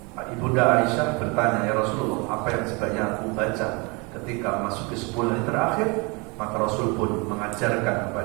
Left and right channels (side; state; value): left; quieter; 29.1 dB